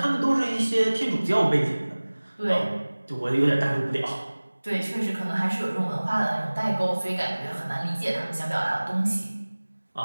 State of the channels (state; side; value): inverted; both; correlation -1.00